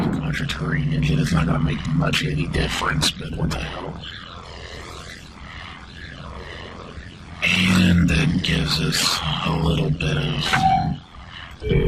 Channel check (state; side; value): identical; both; correlation 1.00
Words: a Mechacronian engine. It's not going to make much any difference, but what the hell. And that gives us a little bit of